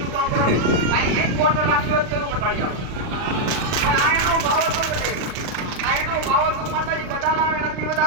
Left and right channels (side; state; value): left; late; 39 ms